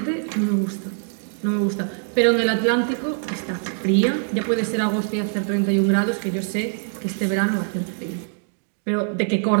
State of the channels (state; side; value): silent; left; digital silence